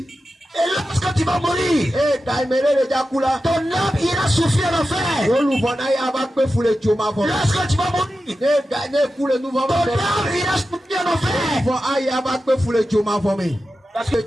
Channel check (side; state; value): both; normal; correlation 0.92